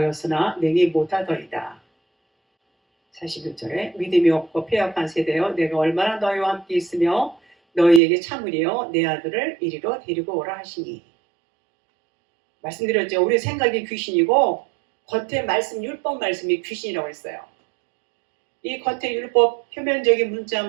능히 못하더이다. 41절에 믿음이 없고 패역한 세대여 내가 얼마나 너희와 함께 있으며 너희에게 참으리요 내 아들을 이리로 데리고 오라 하시니. 말씀드렸죠. 우리 생각이 귀신이고 겉에 말씀 율법 말씀이 귀신이라고 했어요. 이 겉에 율법 표면적인 문자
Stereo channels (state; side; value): drops out; left; at 8.0 s